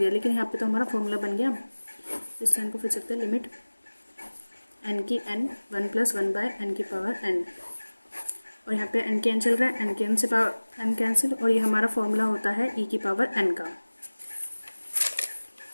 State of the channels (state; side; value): inverted; both; correlation -1.00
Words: लेकिन यहाँ पे तो हमारा फॉर्मूला बन गया। इस n को फिर सकते हैं लिमिट n की n 1 + 1/n की पावर n और यहाँ पे एन के एन चल रहा है, एन के एन से एन कैंसिल, और ये हमारा फॉर्मूला होता है ई की पावर एन का,